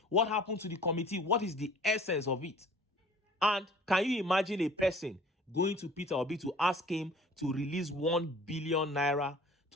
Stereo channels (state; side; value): normal; both; correlation 0.50